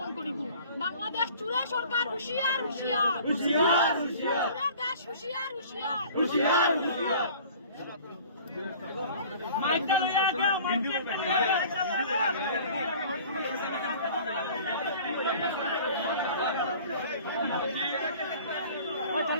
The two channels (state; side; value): inverted; both; correlation -0.46